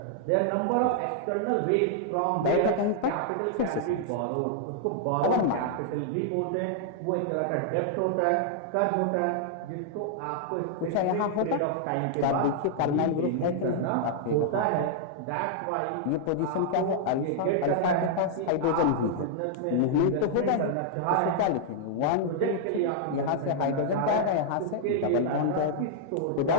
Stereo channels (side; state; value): both; different; correlation -0.01